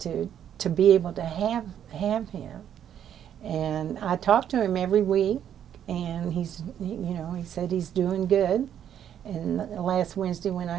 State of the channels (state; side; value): quieter; left; 9.7 dB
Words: be able to have him. And I talk to him every week, and he's, you know, he said he's doing good. And last Wednesday when